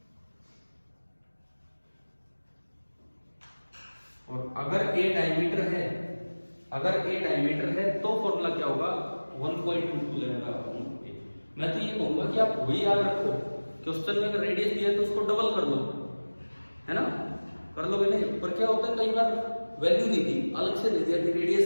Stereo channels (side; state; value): both; inverted; correlation -1.00